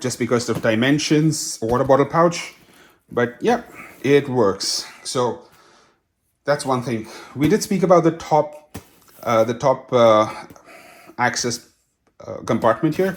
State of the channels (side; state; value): both; identical; correlation 1.00